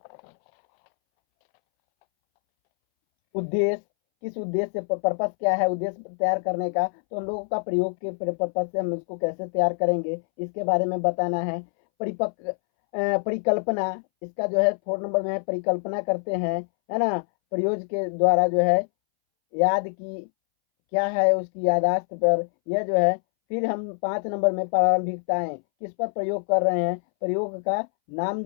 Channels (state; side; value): silent; right; 62 dB below the other